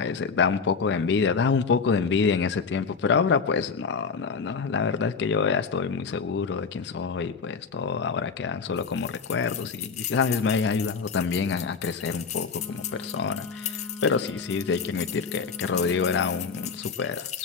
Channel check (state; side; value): quieter; right; 5.3 dB